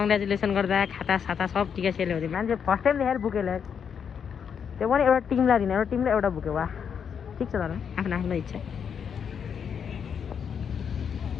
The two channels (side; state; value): right; quieter; 7.3 dB